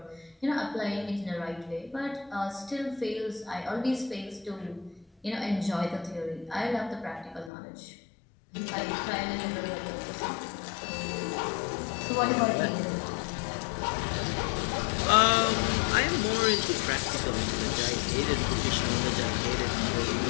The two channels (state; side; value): drops out; right; at 7.5 s